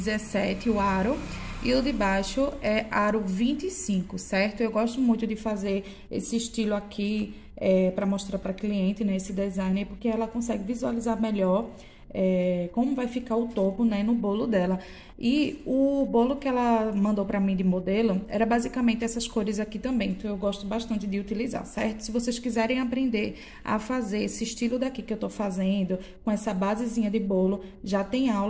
o aro, e o de baixo é aro 25, certo? Eu gosto muito de fazer esse estilo aqui para mostrar para cliente, né? Esse design, porque ela consegue visualizar melhor como vai ficar o topo, né, no bolo dela. E o bolo que ela mandou pra mim de modelo era basicamente essas cores aqui também, então eu gosto bastante de utilizar, certo? Se vocês quiserem aprender a fazer esse estilo daqui que eu tô fazendo, com essa basezinha de bolo, já tem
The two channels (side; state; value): both; identical; correlation 1.00